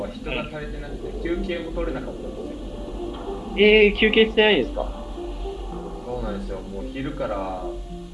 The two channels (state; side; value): identical; both; correlation 1.00